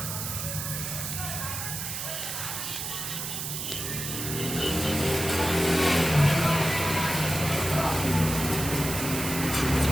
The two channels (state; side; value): noise; right; hiss, 4 dB below the sound